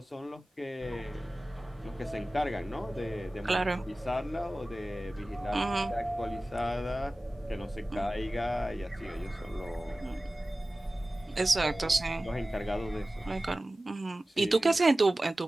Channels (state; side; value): normal; both; correlation 0.97